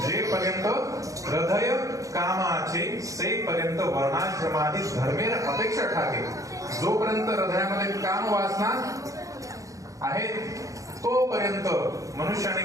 जेपर्यंत हृदय कामाचे सेपर्यंत वर्णाश्रमादी धर्मेर अपेक्षा ठाके. जोपर्यंत हृदयामध्ये काम वासना आहे तोपर्यंत मनुष्याने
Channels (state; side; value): late; left; 0.16 ms